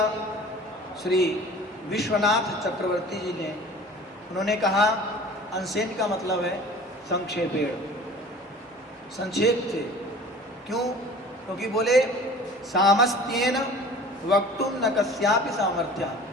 श्री विश्वनाथ चक्रवर्ती जी ने, उन्होंने कहा अंशेन का मतलब है संक्षेपेण, संक्षेप से। क्यों? क्योंकि बोले सामस्त्येन वक्तुम न कस्यापि सामर्थ्य,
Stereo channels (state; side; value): normal; both; correlation 0.44